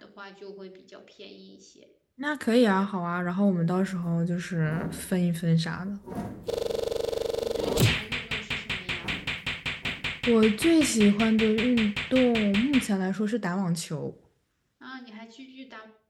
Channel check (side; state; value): both; identical; correlation 1.00